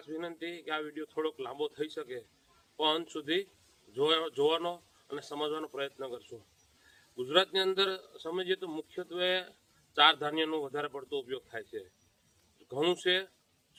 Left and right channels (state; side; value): identical; both; correlation 1.00